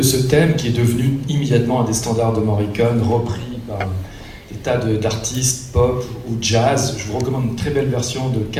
ce thème qui est devenu immédiatement un des standards de Morricone, repris par des tas d'artistes pop ou jazz. Je vous recommande une très belle version de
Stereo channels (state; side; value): identical; both; correlation 1.00